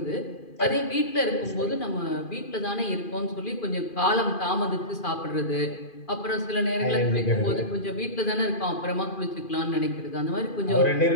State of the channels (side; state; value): right; late; 2.4 ms